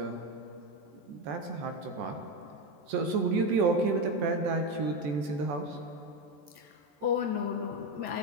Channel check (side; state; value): left; late; 14 ms